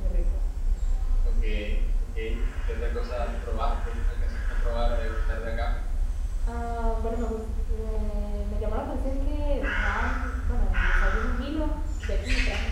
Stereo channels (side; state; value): both; identical; correlation 1.00